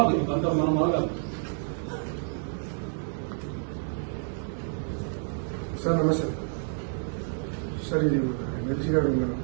అంత మనం మొదలు సార్ నమస్తే సార్. ఇది ఎమ్మెల్సీ గారు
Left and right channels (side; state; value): left; silent; 59 dB below the other